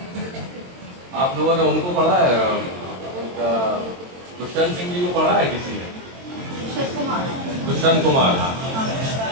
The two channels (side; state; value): left; late; 22 ms